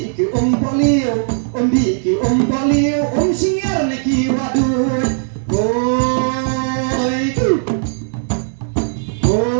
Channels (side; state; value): left; silent; digital silence